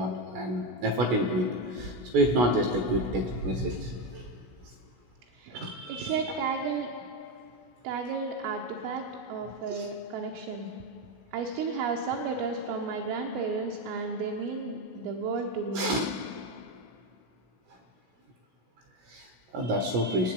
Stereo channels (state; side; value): late; left; 17 ms